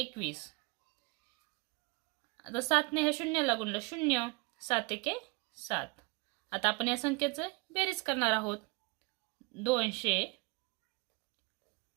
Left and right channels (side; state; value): left; quieter; 28.4 dB